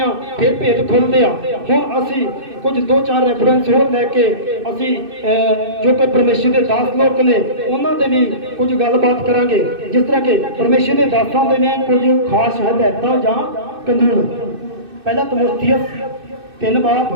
ਫਿਰ ਭੇਤ ਖੁੱਲ੍ਹਦੇ ਆ। ਹੁਣ ਅਸੀਂ ਕੁਝ 2-4 ਰੈਫਰੈਂਸ ਹੋਰ ਲੈ ਕੇ ਅਸੀਂ ਜੋ ਕਿ ਪਰਮੇਸ਼ਰ ਦੇ ਦਾਸ ਲੋਕ ਨੇ ਉਹਨਾਂ ਦੇ ਲਈ ਕੁਝ ਗੱਲਬਾਤ ਕਰਾਂਗੇ। ਜਿਸ ਤਰ੍ਹਾਂ ਕਿ ਪਰਮੇਸ਼ਰ ਦੇ ਦਾਸਾਂ ਦੇ ਨੇ ਕੁਝ ਖਾਸ ਹਦਾਇਤਾਂ ਜਾਂ ਕਾਨੂੰਨ। ਪਹਿਲਾ ਤਮੋਥੀਅਸ 3 ਬਾਬ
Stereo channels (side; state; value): left; late; 2.6 ms